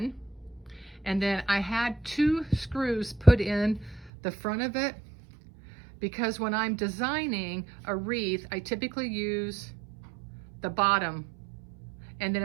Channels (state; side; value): drops out; left; at 4.1 s